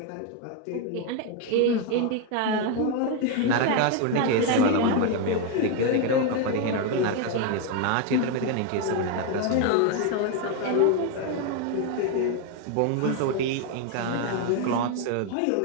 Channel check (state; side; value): different; both; correlation 0.01